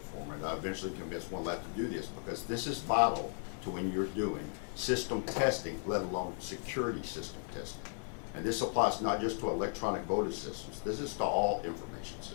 it. I eventually convinced one lab to do this because this is vital to when you're doing system testing, let alone security system testing. And this applies not just to electronic voting systems. This is to all information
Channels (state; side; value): silent; right; 54 dB below the other